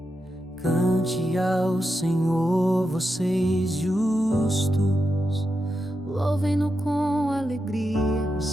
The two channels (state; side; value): normal; both; correlation 0.87